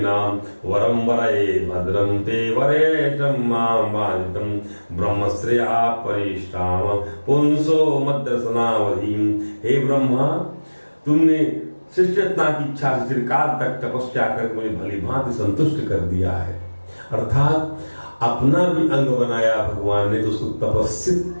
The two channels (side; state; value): both; inverted; correlation -1.00